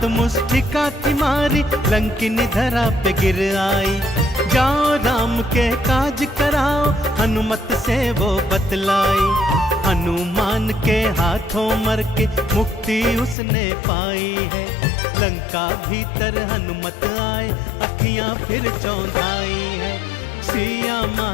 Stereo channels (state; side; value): drops out; right; at 13.4 s